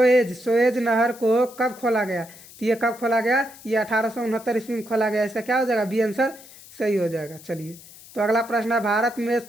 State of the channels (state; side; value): noise; left; hiss, 20 dB below the sound